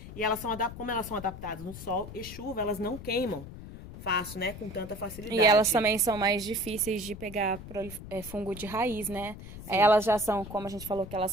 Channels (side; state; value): left; noise; rumble, 13 dB below the sound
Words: e como elas são adaptadas no sol e chuva, elas não queimam fácil, né? Com tanta facilidade. E elas também são mais difíceis de pegar fungo de raiz, né? Sim. Elas já são, como a gente falou, que elas